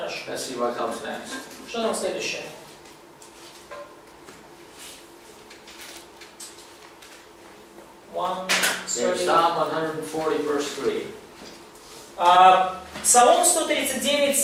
let's see what comes next. Что там следующее? Okay, Psalm 140, verse 3. Псалом 139,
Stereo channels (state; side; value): identical; both; correlation 1.00